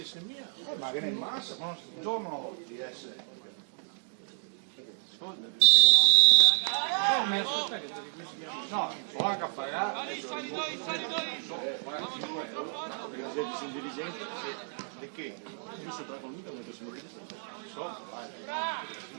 mia. Ma che ne massa, ma non giorno di essere. No, so anche a pagare. Di che? Io si tratta con lui, non posso dire. So, vai.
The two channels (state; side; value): silent; left; digital silence